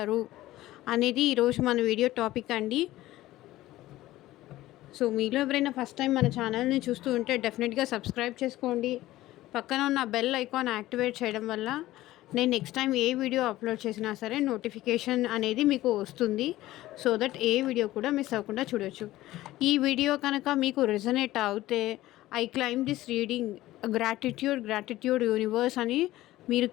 అనేది ఈరోజు మన వీడియో టాపిక్ అండి. సో మీలో ఎవరైనా ఫస్ట్ టైం మన ఛానల్ని చూస్తూ ఉంటే డెఫినెట్గా సబ్స్క్రైబ్ చేసుకోండి. పక్కన ఉన్న బెల్ ఐకాన్ యాక్టివేట్ చేయడం వల్ల నేను నెక్స్ట్ టైం ఏ వీడియో అప్లోడ్ చేసినా సరే నోటిఫికేషన్ అనేది మీకు వస్తుంది. సో దట్ ఏ వీడియో కూడా మిస్ అవ్వకుండా చూడొచ్చు. ఈ వీడియో కనుక మీకు రెజనేట్ అవుతే I claim this reading gratitude universe అని మీరు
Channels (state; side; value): quieter; right; 16.1 dB